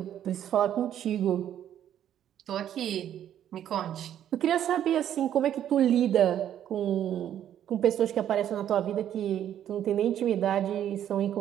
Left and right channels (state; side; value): quieter; left; 10.6 dB